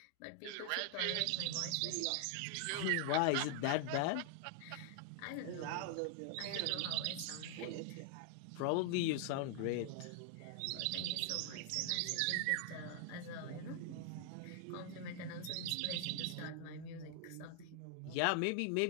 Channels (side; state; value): both; different; correlation 0.00